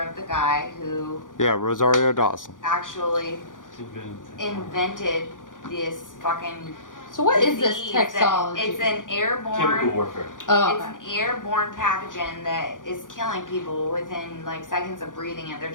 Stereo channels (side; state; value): right; late; 0.88 ms